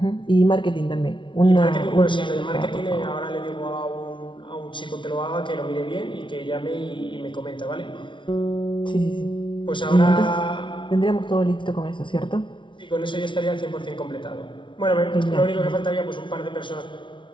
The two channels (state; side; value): late; right; 0.24 ms